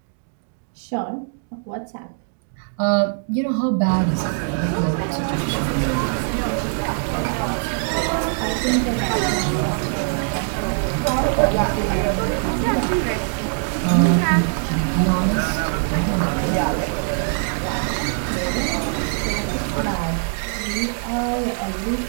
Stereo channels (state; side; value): silent; left; digital silence